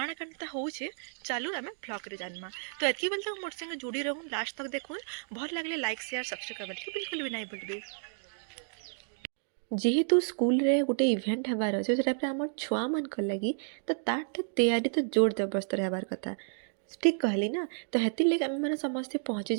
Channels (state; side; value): silent; left; digital silence